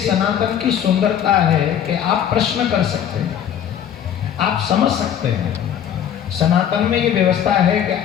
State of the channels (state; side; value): quieter; right; 9.4 dB